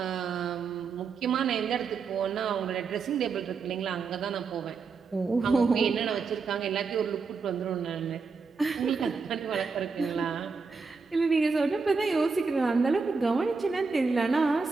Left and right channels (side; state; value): left; quieter; 4.8 dB